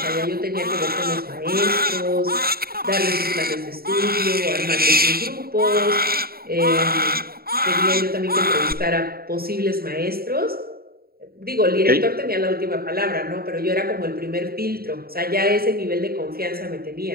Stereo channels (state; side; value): late; left; 0.44 ms